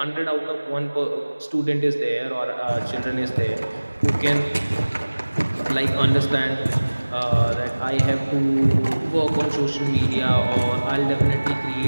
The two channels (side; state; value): both; inverted; correlation -1.00